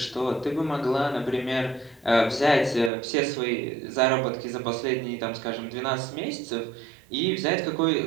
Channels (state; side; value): drops out; left; at 2.9 s